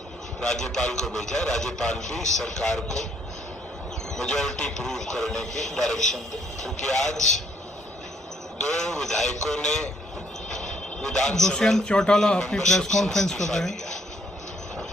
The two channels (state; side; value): normal; both; correlation 0.67